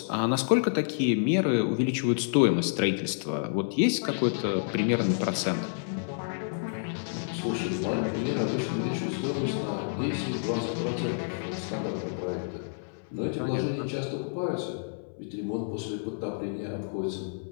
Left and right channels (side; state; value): right; silent; 58 dB below the other